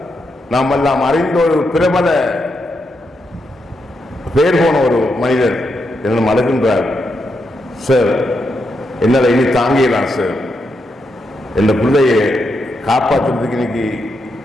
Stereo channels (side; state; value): both; normal; correlation 0.83